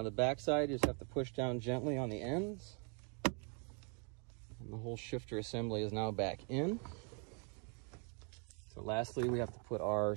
the back side, you just have to push down gently on the ends. And the whole shifter assembly is now back in. So So lastly, we have to put our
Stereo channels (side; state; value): left; quieter; 38.5 dB